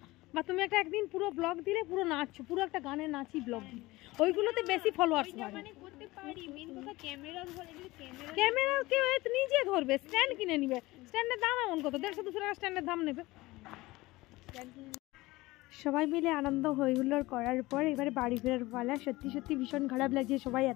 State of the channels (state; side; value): quieter; right; 20.0 dB